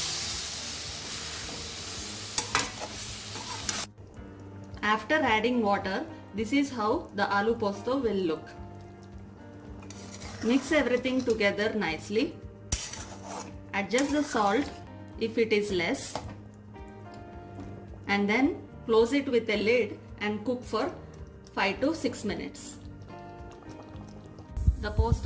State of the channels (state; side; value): identical; both; correlation 1.00